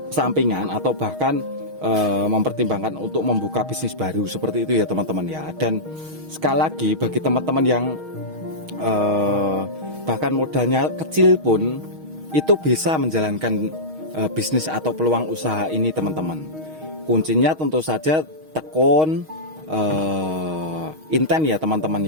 sampingan atau bahkan mempertimbangkan untuk membuka bisnis baru, seperti itu ya teman-teman ya. Dan sekali lagi bagi teman-teman yang bahkan modalnya kecil pun itu bisa menjalankan bisnis atau peluang usaha ini teman-teman. Kuncinya tentu saja tekun, inten ya teman-teman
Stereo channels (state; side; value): late; left; 6.4 ms